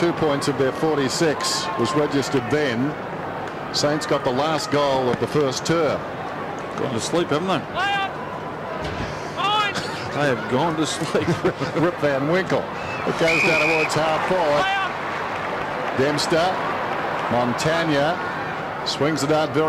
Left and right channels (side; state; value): both; identical; correlation 1.00